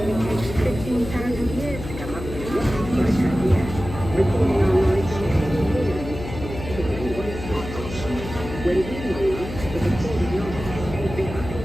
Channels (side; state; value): left; noise; hum, 10 dB below the sound